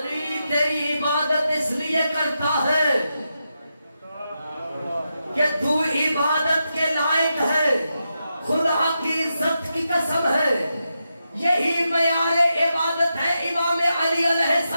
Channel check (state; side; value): inverted; both; correlation -0.87